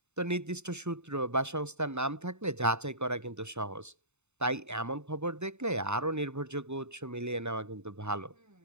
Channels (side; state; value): left; late; 0.82 ms